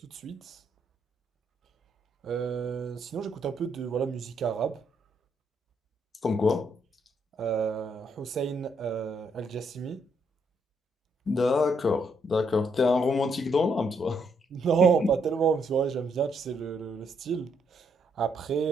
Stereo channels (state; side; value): normal; both; correlation 0.74